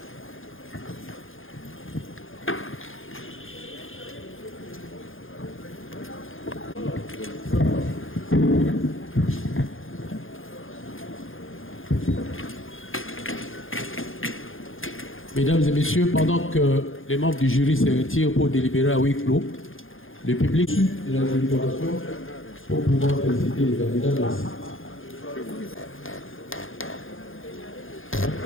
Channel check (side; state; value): right; late; 0.59 ms